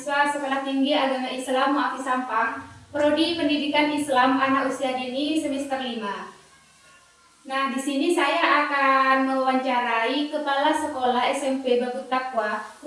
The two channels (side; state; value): both; identical; correlation 1.00